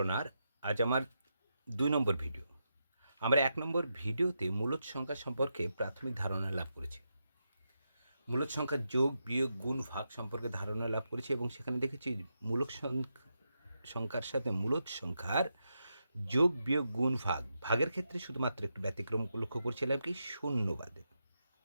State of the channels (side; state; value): both; inverted; correlation -0.85